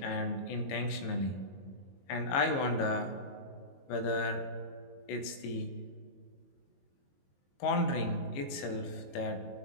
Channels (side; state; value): right; late; 22 ms